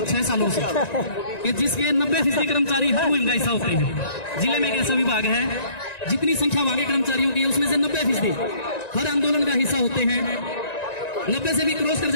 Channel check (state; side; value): late; right; 1.9 ms